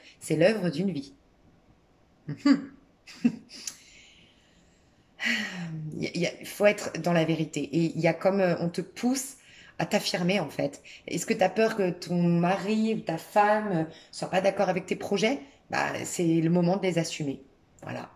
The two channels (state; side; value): identical; both; correlation 1.00